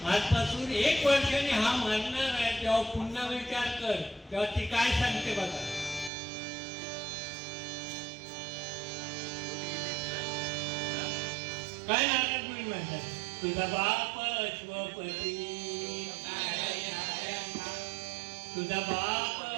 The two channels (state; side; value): drops out; left; at 6.1 s